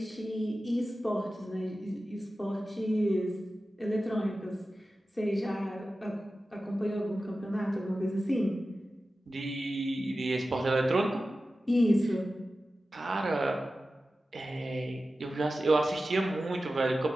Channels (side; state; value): both; normal; correlation 0.94